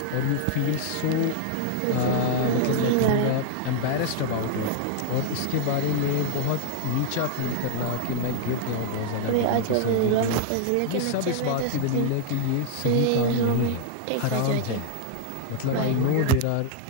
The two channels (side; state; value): both; different; correlation 0.00